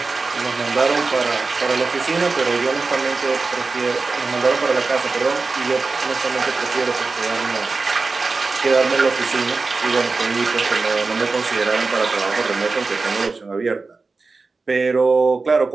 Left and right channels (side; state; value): left; quieter; 4.0 dB